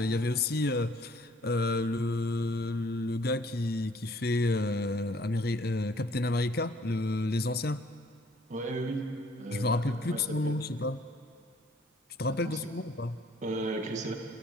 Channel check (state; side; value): normal; both; correlation 0.59